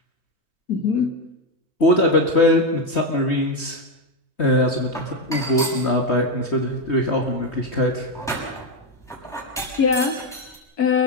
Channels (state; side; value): normal; both; correlation 0.08